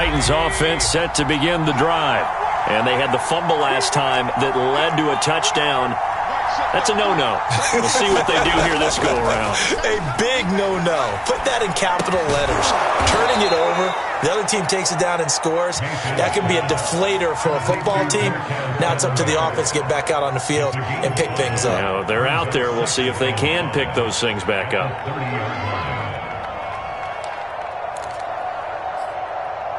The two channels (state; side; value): identical; both; correlation 1.00